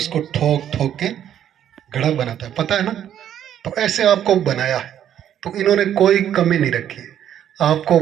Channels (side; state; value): left; quieter; 10.3 dB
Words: ठोक ठोक के घड़ा बनाता है, पता है ना। तो ऐसे आपको बनाया है। तो इन्होंने कोई कमी नहीं रखी, आपको